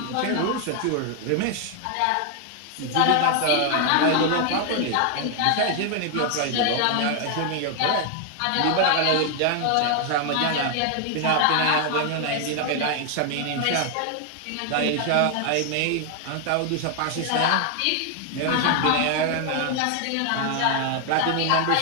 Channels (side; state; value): both; different; correlation 0.00